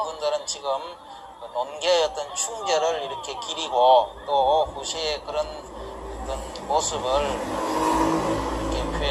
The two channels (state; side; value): identical; both; correlation 1.00